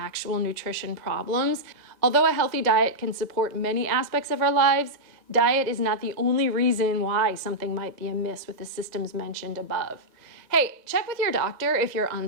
nutrition problems. Although a healthy diet can support many aspects of our lives, diet is not the only reason why something might be amiss with the systems mentioned above. Hey, check with your doctor if you're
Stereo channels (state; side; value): late; left; 1.9 ms